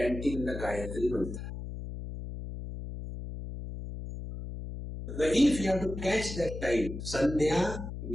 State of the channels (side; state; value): left; noise; hum, 8 dB below the sound